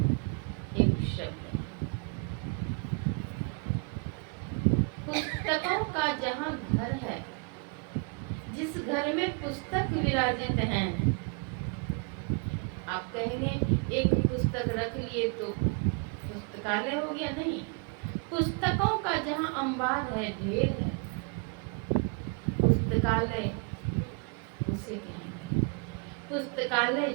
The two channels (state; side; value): quieter; left; 36.0 dB